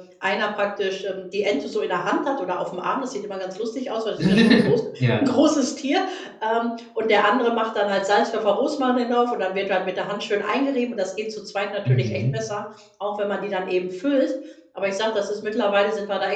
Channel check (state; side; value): identical; both; correlation 1.00